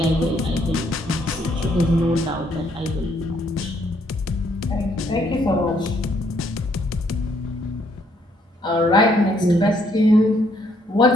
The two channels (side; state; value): both; normal; correlation 0.69